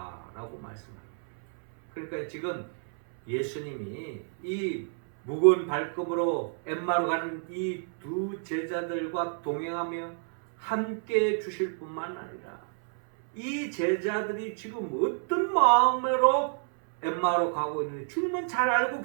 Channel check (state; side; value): silent; left; 58 dB below the other